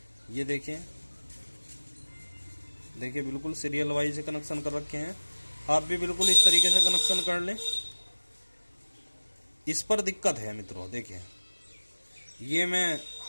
ये देखिए देखिए बिल्कुल सीरियल वाइज से कनेक्शन कर रखे हैं। आप भी बिल्कुल इस तरीके से कनेक्शन कर लें। इस पर दिक्कत है मित्रों, देखिए ये मैं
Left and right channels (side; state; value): both; inverted; correlation -1.00